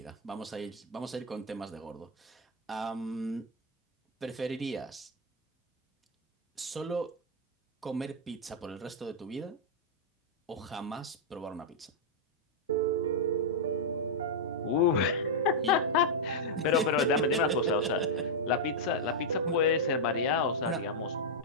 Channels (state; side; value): normal; both; correlation -0.04